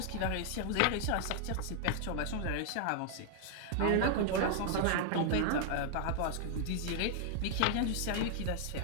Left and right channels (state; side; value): different; both; correlation 0.00